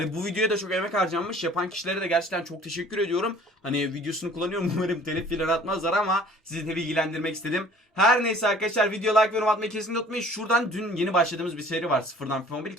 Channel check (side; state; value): both; normal; correlation 0.52